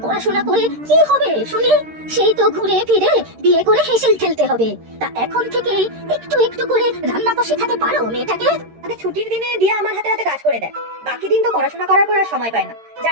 পড়াশোনা করে কি হবে শুনি? সেই তো ঘুরে ফিরে বিয়ে করে হেসেল খেলতে হবে। তা এখন থেকে একটু একটু করে রান্না তো শেখাতে পারো মেয়েটাকে। মানে ছুটির দিনে দিয়া আমার হাতে হাতে কাজ করে দেয়, বাকি দিন তো পড়াশোনা করার পর আর সময় পায় না।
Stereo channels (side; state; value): left; late; 13 ms